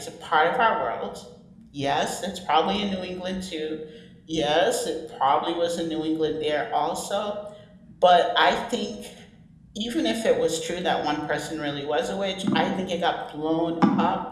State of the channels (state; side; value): identical; both; correlation 1.00